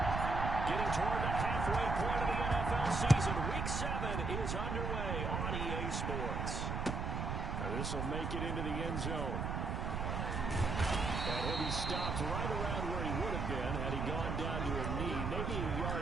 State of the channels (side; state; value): right; noise; rumble, 2 dB below the sound